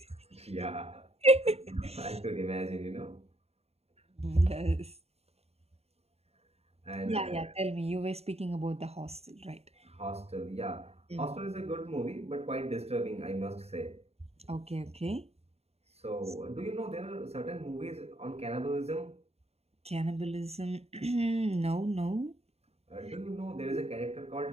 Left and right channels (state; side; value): late; left; 0.30 ms